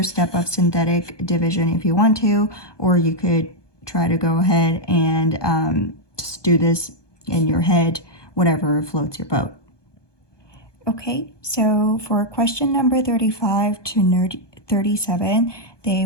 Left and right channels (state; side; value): late; right; 1.2 ms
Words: step of synthetic division if you want to, or you could try to go ahead and just do this in your head, whatever floats your boat. Okay, so for question number 35 to 37, they